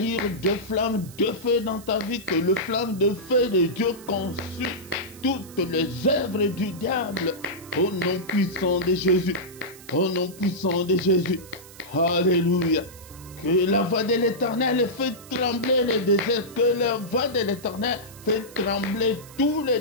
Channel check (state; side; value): noise; right; hiss, 20 dB below the sound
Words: deux flammes de feu dans ta vie, que le flamme de feu de Dieu consume toutes les œuvres du diable. Au nom puissant de Jésus. Au nom puissant de Jésus. Alléluia. Que la voix de l'Éternel fait trembler les déserts. Que la voix de l'Éternel fait trembler tous les